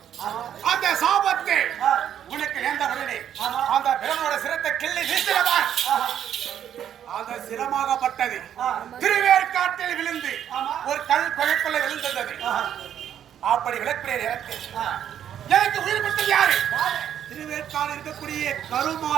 அந்த சாபத்தை உனக்கு நேர்ந்த உடனே அந்த பிரம்மனோட சிரத்தை கிள்ளி வீசினதா அந்த சிரமாகப்பட்டது திருவேற்காட்டில் விழுந்து ஒரு கல் குகைக்குள்ள விழுந்தது அப்படி விளக்கிய நேரத்தில் எனக்கு உயிர் கொடுத்தது யாரு திருவேற்காடு இருக்கக்கூடிய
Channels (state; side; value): quieter; left; 9.9 dB